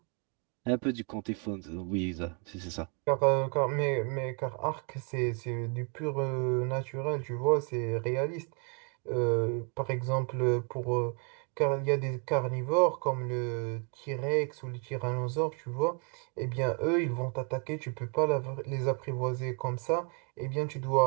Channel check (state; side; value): quieter; left; 38.3 dB